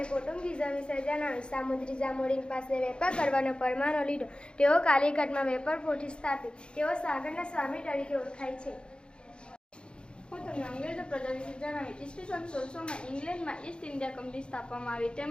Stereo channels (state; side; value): late; right; 0.053 ms